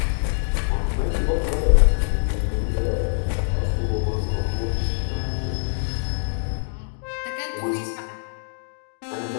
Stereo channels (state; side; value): silent; right; digital silence